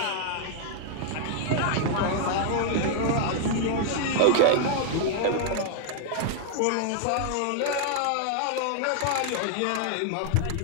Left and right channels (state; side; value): different; both; correlation 0.00